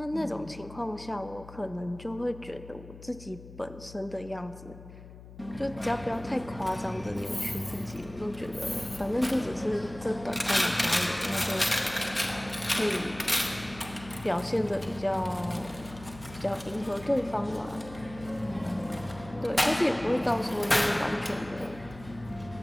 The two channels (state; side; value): noise; left; hum, 16 dB below the sound